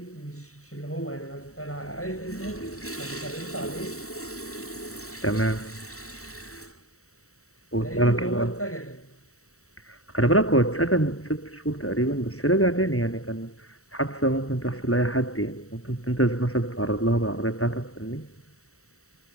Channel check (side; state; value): right; late; 0.64 ms